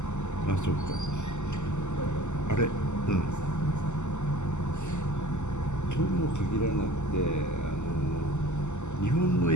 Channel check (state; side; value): late; right; 0.83 ms